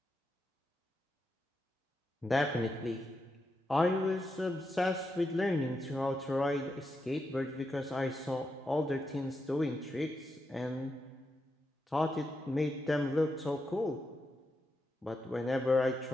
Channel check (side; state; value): both; normal; correlation 0.85